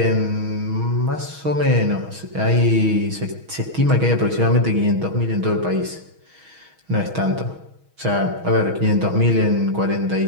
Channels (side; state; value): left; late; 6.3 ms